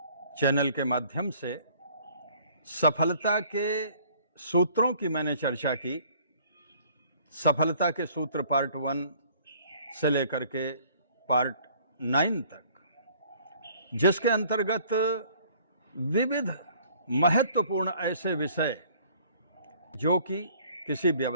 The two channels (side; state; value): both; inverted; correlation -0.56